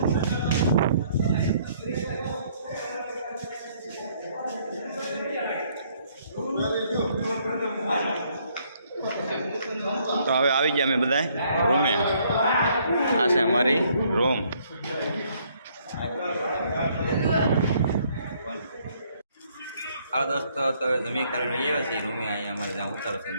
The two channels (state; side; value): inverted; both; correlation -0.66